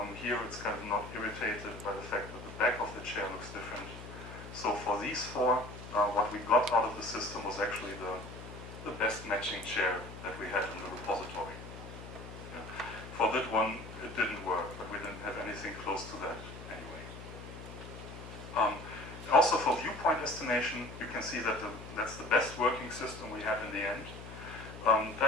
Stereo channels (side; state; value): left; noise; hum, 12 dB below the sound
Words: Here it's kind of not irritated by the fact that the back of the chair looks different. So for these 4, what we got out of the system was actually the best matching chair that we had in the repository. Yeah. For that one, it didn't work, but we didn't have anything close to that anyway. Also for viewpoint estimation, you can see that that's the best working system we had in the end.